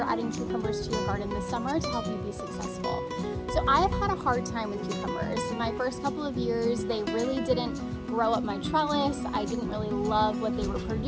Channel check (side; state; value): both; identical; correlation 1.00